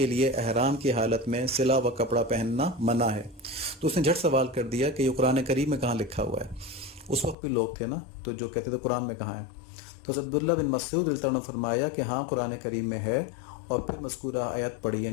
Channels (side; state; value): right; drops out; at 7.4 s